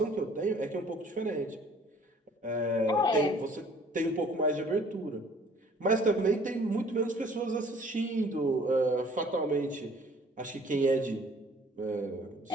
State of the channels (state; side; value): normal; both; correlation 0.55